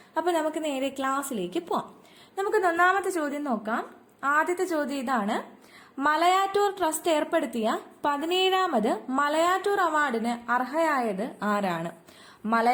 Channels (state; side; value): identical; both; correlation 1.00